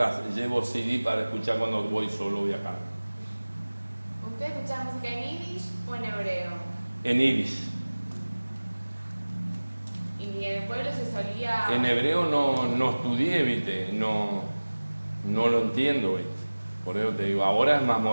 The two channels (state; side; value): inverted; both; correlation -1.00